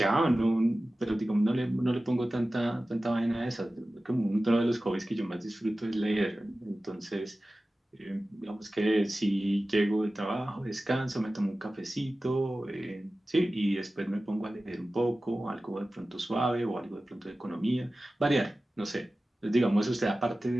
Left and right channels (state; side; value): normal; both; correlation 0.96